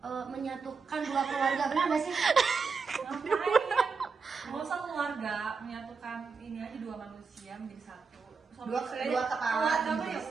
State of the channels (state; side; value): quieter; left; 5.1 dB